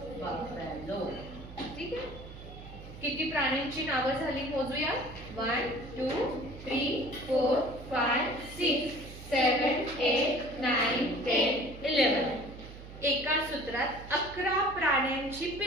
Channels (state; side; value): noise; right; hum, 14 dB below the sound